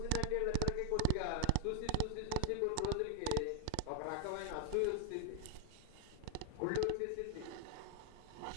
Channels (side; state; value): both; different; correlation 0.00